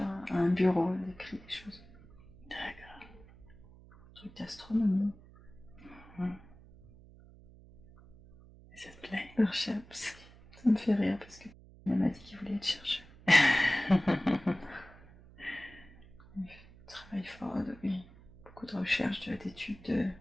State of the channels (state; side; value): noise; right; hum, 22 dB below the sound